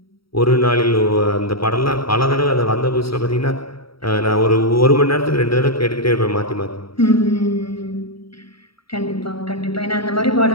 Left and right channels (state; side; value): late; right; 0.75 ms